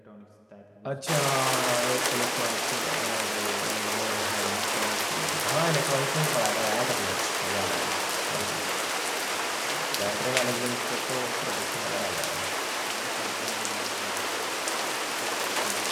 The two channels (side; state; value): both; identical; correlation 1.00